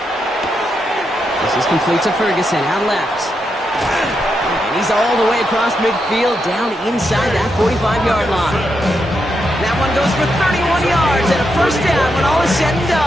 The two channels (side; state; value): both; normal; correlation 0.83